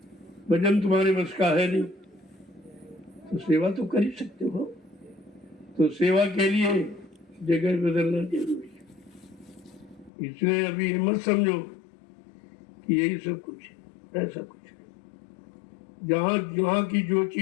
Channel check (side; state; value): right; drops out; at 10.1 s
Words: भजन तुम्हारे बस का है नहीं, तो सेवा तो कर ही सकते हो। तो सेवा के लिए जगह बदलना जरूरी है। इसलिए अभी मत समझो कि यही सब कुछ है, ऐसा कुछ है। जहाँ की जो